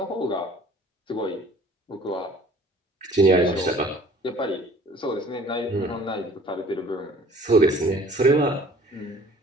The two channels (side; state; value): both; normal; correlation 0.51